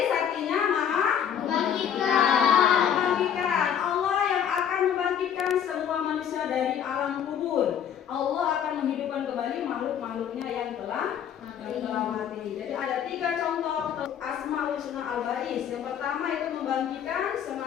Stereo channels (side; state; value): right; quieter; 8.9 dB